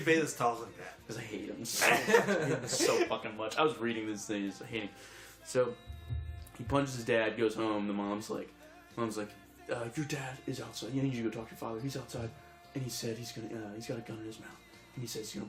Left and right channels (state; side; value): identical; both; correlation 1.00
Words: Bayles talk like that? Because I hate him so fucking much. I was reading this thing, I hate him. So he punches his dad, goes home. The mom's like. Your dad is outside. You need to go talk to your father. He's outside, and he said he's got a gun in his mouth, and he says he's